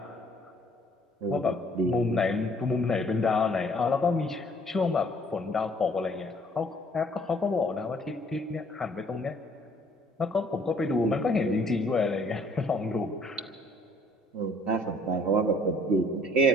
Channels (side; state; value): both; normal; correlation 0.60